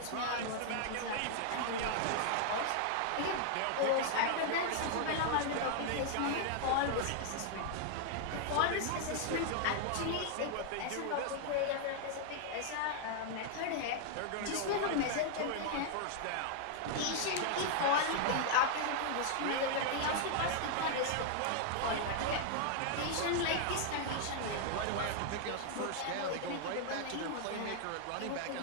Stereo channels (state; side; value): different; both; correlation 0.00